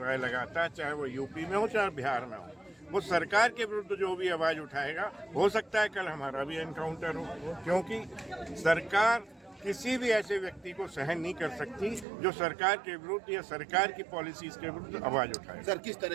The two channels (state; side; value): drops out; left; at 12.1 s